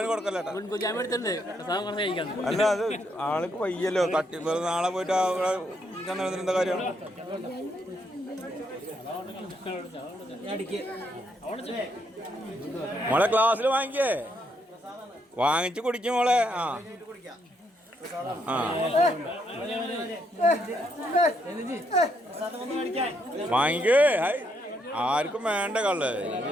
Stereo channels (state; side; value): normal; both; correlation 0.75